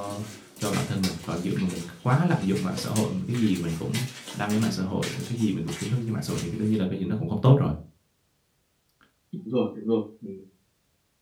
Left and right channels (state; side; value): identical; both; correlation 1.00